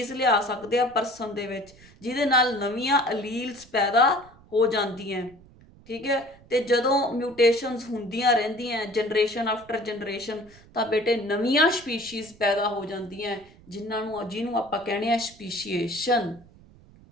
ਲਿਆ ਸਕਦੇ ਆ ਪਰਸਨ ਦੇ ਵਿੱਚ, ਜਿਹਦੇ ਨਾਲ ਨਵੀਆਂ ਅਲੀਲਸ ਪੈਦਾ ਹੋ ਜਾਂਦੀਆਂ। ਠੀਕ ਹੈ, ਤੇ ਜਦੋਂ ਮਿਊਟੇਸ਼ਨਸ ਹੁੰਦੀਆਂ ਰਹਿੰਦੀਆਂ ਜਨਰੇਸ਼ਨ ਆਫਟਰ ਜਨਰੇਸ਼ਨ, ਤਾਂ ਬੇਟੇ ਨਵੀਆਂ ਸਪੀਸ਼ੀਜ਼ ਪੈਦਾ ਹੋ ਜਾਂਦੀਆਂ, ਜਿਹਨੂੰ ਆਪਾਂ ਕਹਿੰਦੇ ਆ ਸਪੀਸ਼ੀਏਸ਼ਨ।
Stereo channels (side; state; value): right; noise; rumble, 25 dB below the sound